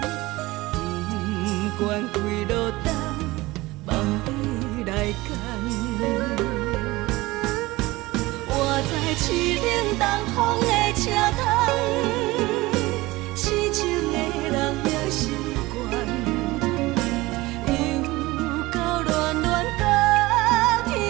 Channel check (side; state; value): left; quieter; 20.2 dB